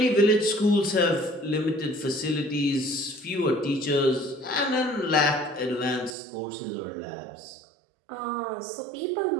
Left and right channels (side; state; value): left; drops out; at 6.2 s